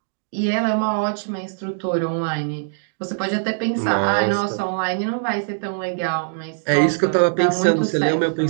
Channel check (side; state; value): left; silent; digital silence